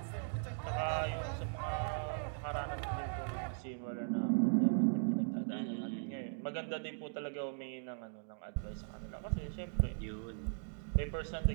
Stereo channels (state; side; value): silent; left; digital silence